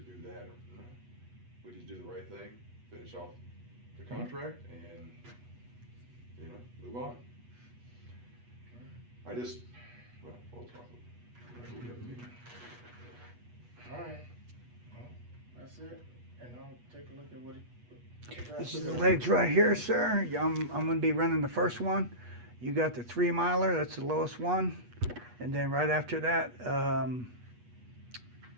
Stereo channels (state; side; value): late; left; 8.3 ms